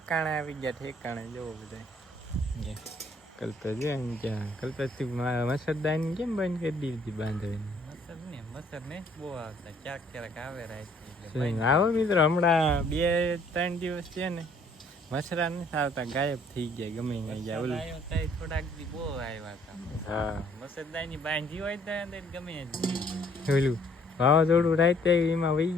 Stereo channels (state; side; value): normal; both; correlation 0.62